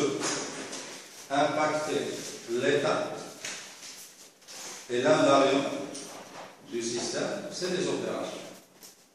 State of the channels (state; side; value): identical; both; correlation 1.00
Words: impacter l'état et l'invariant du système, c'est les opérations.